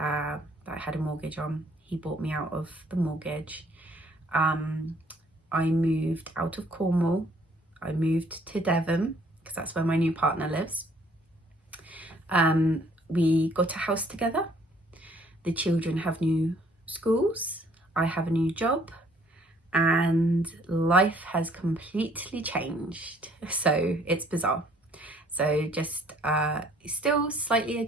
I had a mortgage on. He bought me out of the mortgage. I moved out of Cornwall. I moved to Devon, because that's where my new partner lives. We got a house together. The children have new schools. I have a new job, and life has completely changed. So it's bizarre. So just still slightly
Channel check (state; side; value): normal; both; correlation 0.61